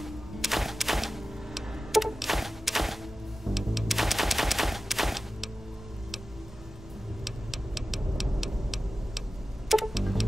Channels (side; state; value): both; normal; correlation 0.95